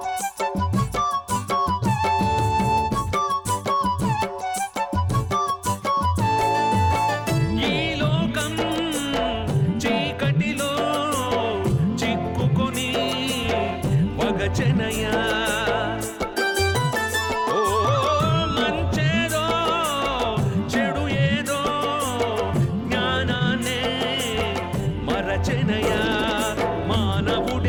వగచనయా ఓ మంచేదో చెడు ఏదో జ్ఞానాన్నే మరచనయా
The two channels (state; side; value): identical; both; correlation 1.00